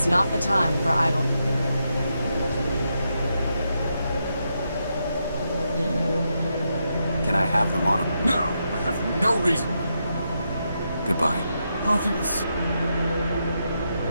not the time for idle. Can I have the monocle? No, I have no reason. Goodbye. Parting is...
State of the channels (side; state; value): both; inverted; correlation -0.83